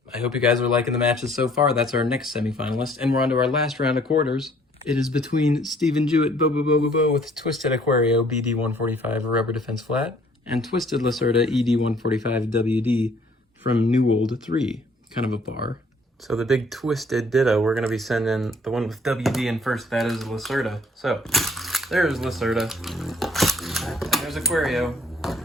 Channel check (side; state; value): both; normal; correlation 0.60